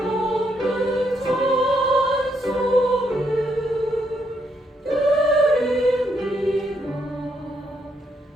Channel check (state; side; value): normal; both; correlation 0.76